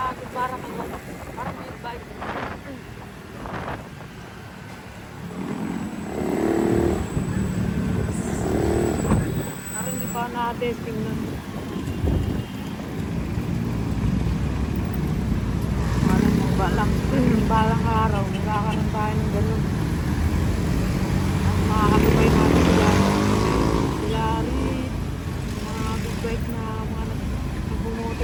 Parang agad, parang big bike. Parang hindi pa na-testing na. Balang araw, nagkakaroon tayo ng ganun. Ang makakatubay natin sila rin, mga big bike na mga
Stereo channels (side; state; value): both; identical; correlation 1.00